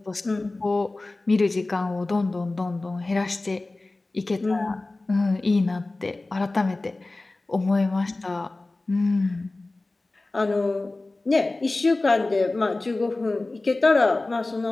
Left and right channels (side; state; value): right; quieter; 3.1 dB